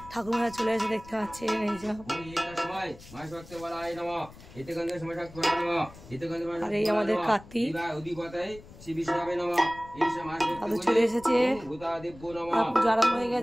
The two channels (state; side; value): noise; left; rumble, 19 dB below the sound